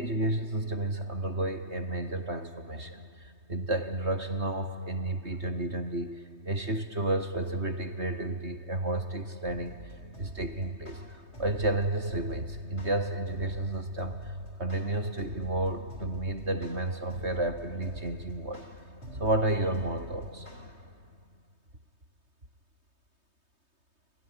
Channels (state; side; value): late; left; 3.2 ms